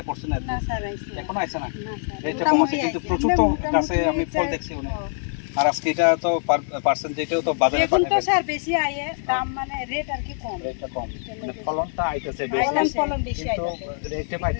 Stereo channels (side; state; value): right; silent; digital silence